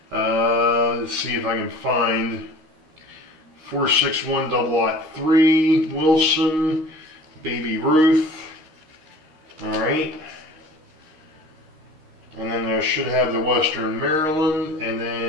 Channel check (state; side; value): late; left; 13 ms